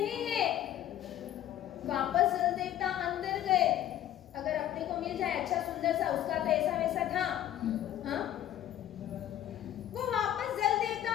है। वापस जल देवता अंदर गए। अगर अपने को मिल जाए अच्छा सुंदर सा, उसका तो ऐसा वैसा था, हाँ? वो वापस जल देवता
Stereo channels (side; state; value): right; quieter; 11.9 dB